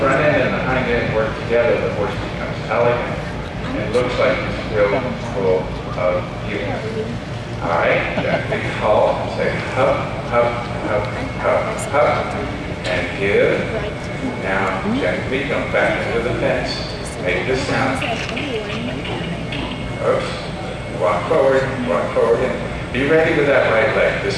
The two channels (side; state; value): both; identical; correlation 1.00